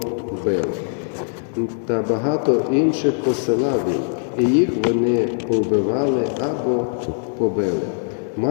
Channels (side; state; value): right; silent; digital silence